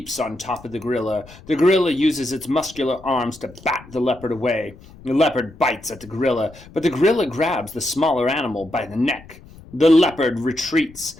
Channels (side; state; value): left; noise; rumble, 21 dB below the sound